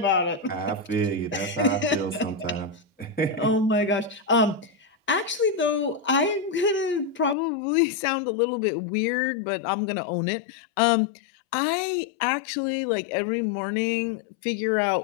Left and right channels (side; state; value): right; drops out; at 7.4 s